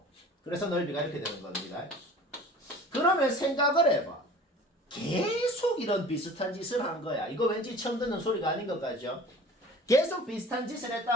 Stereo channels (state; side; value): normal; both; correlation 0.43